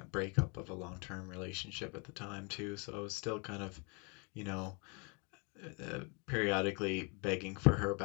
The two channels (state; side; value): quieter; right; 33.6 dB